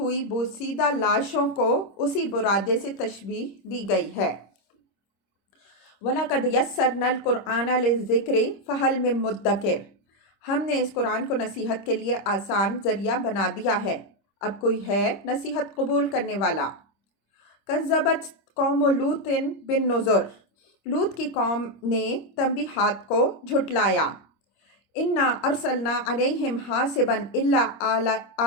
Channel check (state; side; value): late; right; 26 ms